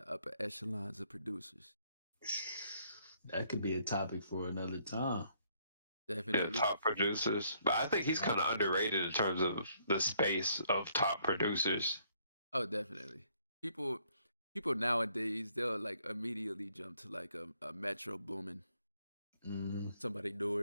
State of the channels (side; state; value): both; inverted; correlation -0.68